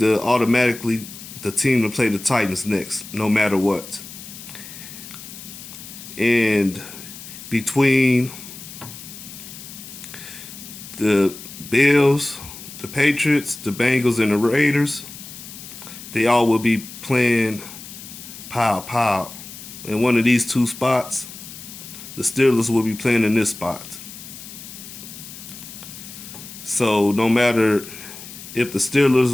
automatically the team to play the Titans next, no matter what. And between the Bills, the Patriots, the Bengals, and the Raiders, they all will be playing pow. In one of these two spots, the Steelers will be playing in this spot. So no matter if the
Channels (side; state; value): left; noise; hiss, 14 dB below the sound